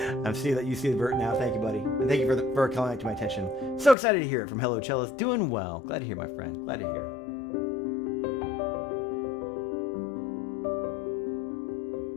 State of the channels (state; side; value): drops out; right; at 4.0 s